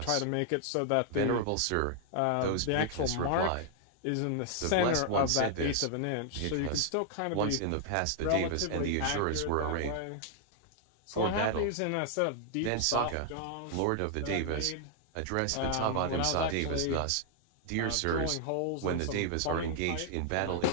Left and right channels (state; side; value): different; both; correlation 0.00